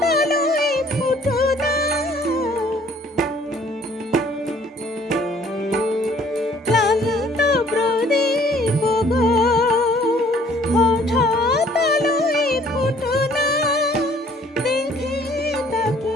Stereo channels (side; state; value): both; normal; correlation 0.58